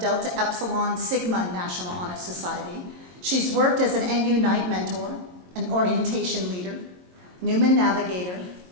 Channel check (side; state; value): left; late; 22 ms